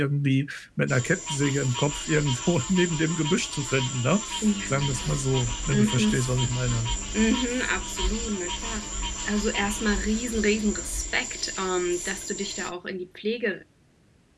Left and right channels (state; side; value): identical; both; correlation 1.00